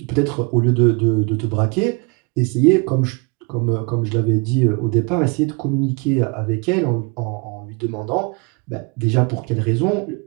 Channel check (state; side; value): quieter; left; 32.0 dB